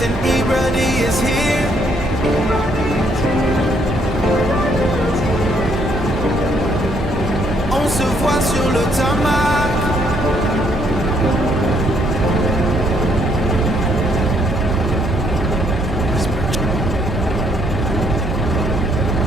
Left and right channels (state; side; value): normal; both; correlation 0.69